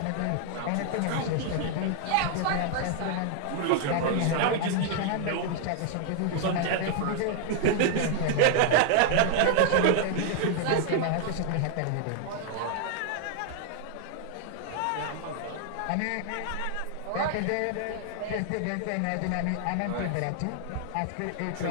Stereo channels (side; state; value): both; different; correlation 0.00